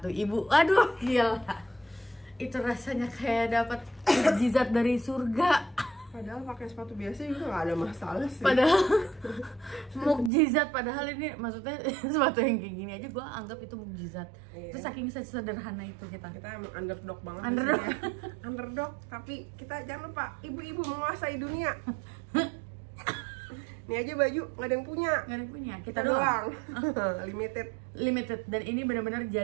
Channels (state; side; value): drops out; left; at 10.3 s